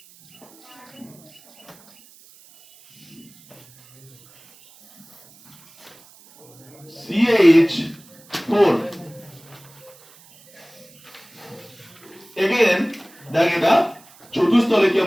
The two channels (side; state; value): right; noise; hiss, 26 dB below the sound